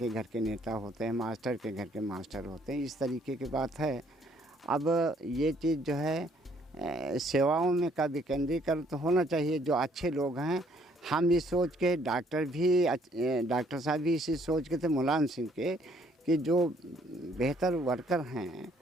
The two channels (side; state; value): both; normal; correlation 0.64